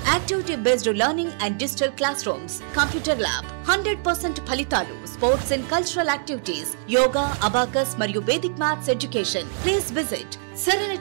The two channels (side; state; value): left; silent; digital silence